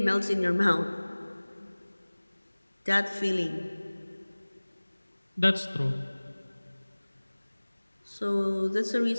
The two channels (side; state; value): both; inverted; correlation -1.00